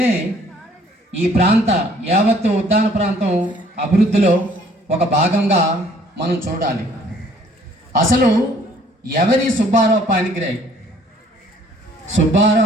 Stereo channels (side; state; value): both; normal; correlation 0.59